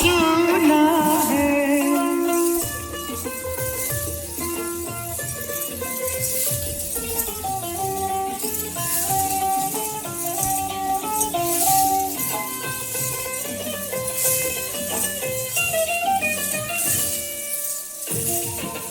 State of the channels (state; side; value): identical; both; correlation 1.00